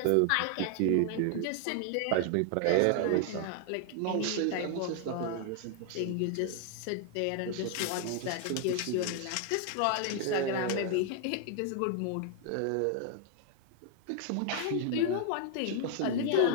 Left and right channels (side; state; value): both; different; correlation 0.00